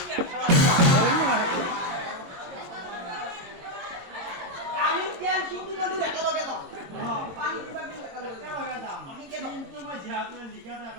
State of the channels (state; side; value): late; left; 22 ms